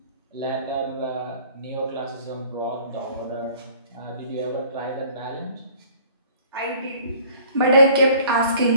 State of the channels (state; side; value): inverted; both; correlation -0.52